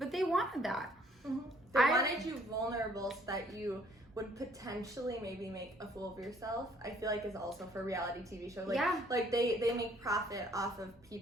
they wanted that. They wanted you vulnerable so that you would potentially maybe make a fool of yourself. I feel like is also for reality TV shows. Like, like they make profit off of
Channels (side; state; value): both; normal; correlation 0.61